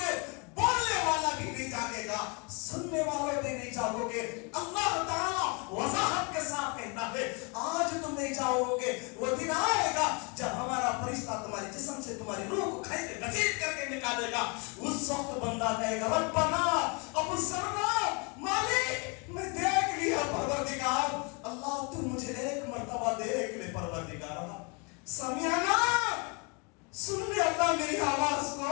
بولنے والا بھی نہیں جاگے گا، سننے والے بھی نہیں جاگو گے. اللہ تعالیٰ وضاحت کے ساتھ کہتا ہے آج تم نہیں جاؤ گے. وہ دن آئے گا جب ہمارا فرشتہ تمہارے جسم سے تمہاری روح کو کھینچ کے گھسیٹ کر کے نکالے گا. اس وقت بندہ کہے گا ربنا ابصرنا، مالک میں دیکھ لیا پروردگار. اللہ تو مجھے ایک مرتبہ دیکھ لے پروردگار. سمعنا، سن لے اللہ میری آواز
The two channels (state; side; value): quieter; right; 32.6 dB